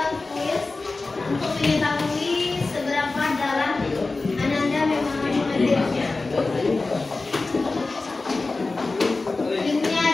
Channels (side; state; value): right; quieter; 3.5 dB